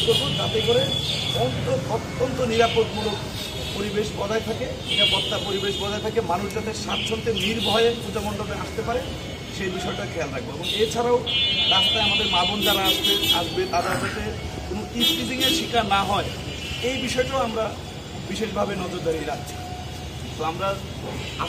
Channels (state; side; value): identical; both; correlation 1.00